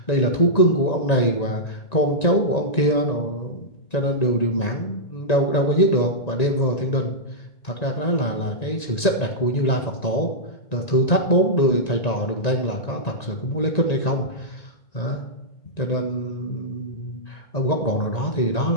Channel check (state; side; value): late; right; 1.9 ms